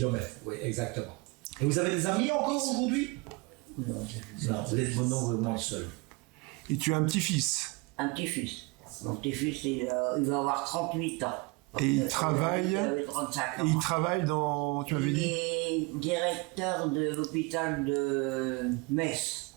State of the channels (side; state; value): left; quieter; 26.3 dB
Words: oui, exactement. Et vous avez des amis encore aujourd'hui? Non, Non, vous êtes vraiment seul. Et tu as un petit-fils. un petit-fils. Mon petit-fils, il va avoir 38 ans. Et il travaille. Il avait 35 ans. Et il travaille dans. Tu m'avais Il dit est directeur de l'hôpital de Metz.